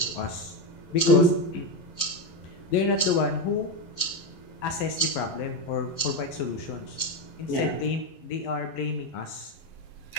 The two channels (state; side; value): late; right; 11 ms